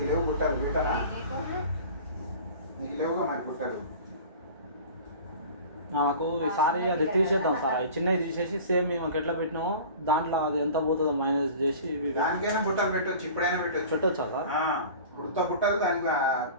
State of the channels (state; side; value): inverted; both; correlation -0.39